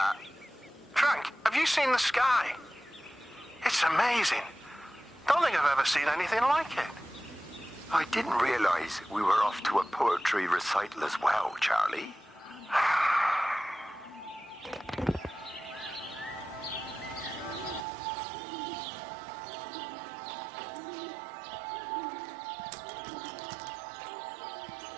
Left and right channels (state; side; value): drops out; left; at 17.9 s